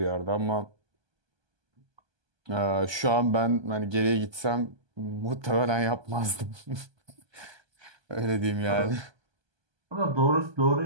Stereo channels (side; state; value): left; late; 1.2 ms